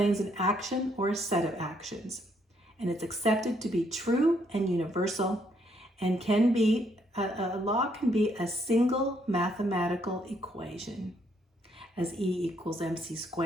an action or a set of actions, and it's accepted to be true and universal, and a law can be a single mathematical equation, as E equals mc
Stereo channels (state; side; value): normal; both; correlation 0.72